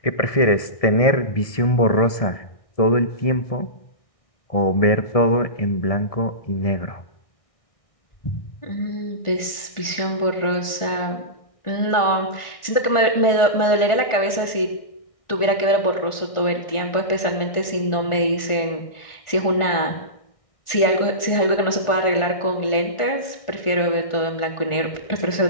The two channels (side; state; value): right; late; 1.4 ms